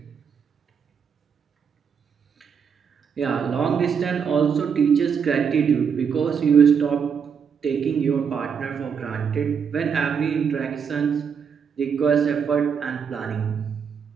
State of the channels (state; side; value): quieter; left; 6.8 dB